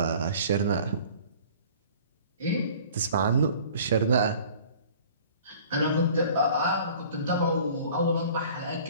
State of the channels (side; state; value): both; inverted; correlation -0.48